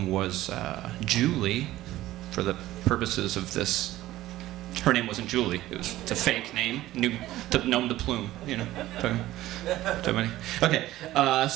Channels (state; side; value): quieter; left; 15.5 dB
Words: was Julie, for the purposes of this. Her name wasn't Julie. It's a fake name, nom de plume, Okay,